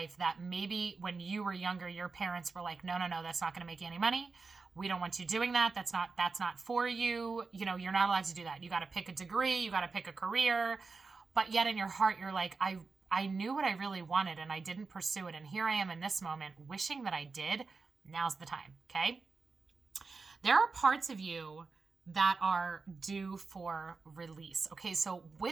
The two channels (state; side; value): quieter; left; 4.3 dB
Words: that maybe when you were younger, your parents were like, no, that's not going to make you any money. We don't want you doing that. That's not for you. You're not allowed to do that. You got to pick a degree. You got to pick a career. But yet in your heart, you're like, I knew what I really wanted and I didn't pursue it. And here I am in this moment wishing that I did. Now's the time. Okay. There are parts of you that are due for release. Okay, so